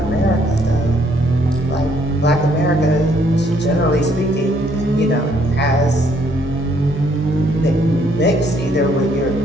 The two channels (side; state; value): both; normal; correlation 0.67